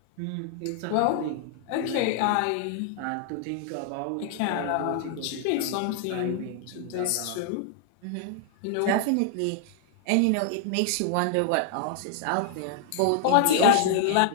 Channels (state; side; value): different; both; correlation -0.01